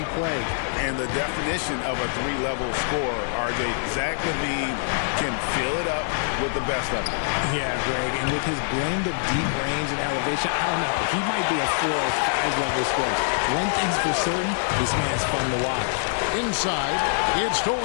play. And the definition of a 3-level scorer, RJ, Zach LaVine can fill it up with the best of them. Yeah, Greg, and with his blend of deep range and elevation, I don't know, he might be a 4 or 5 level scorer. One thing's for certain, this man's fun to watch. Inside, it's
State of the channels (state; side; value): silent; right; digital silence